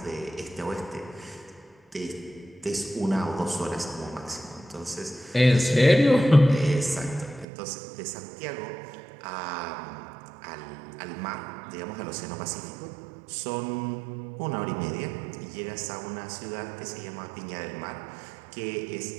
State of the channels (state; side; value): drops out; left; at 7.5 s